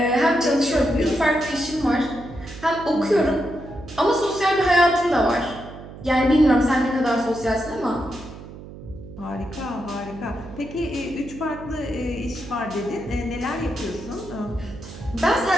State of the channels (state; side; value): noise; right; hum, 15 dB below the sound